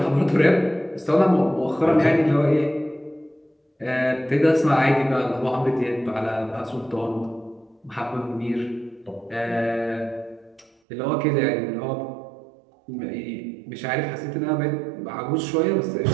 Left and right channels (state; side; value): drops out; left; at 10.7 s